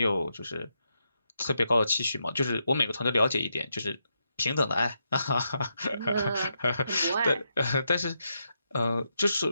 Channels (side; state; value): both; inverted; correlation -0.83